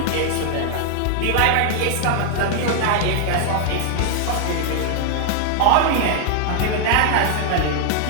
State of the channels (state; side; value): different; both; correlation 0.00